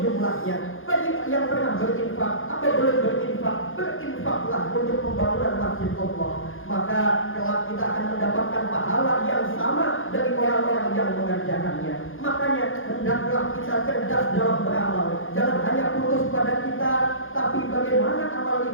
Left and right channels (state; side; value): late; right; 0.59 ms